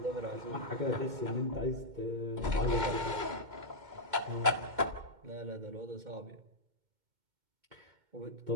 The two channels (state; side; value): late; left; 2.1 ms